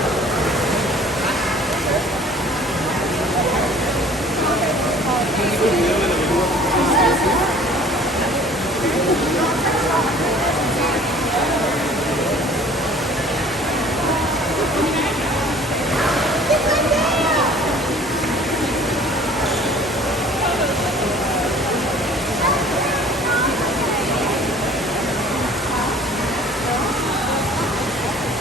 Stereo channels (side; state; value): both; normal; correlation 0.49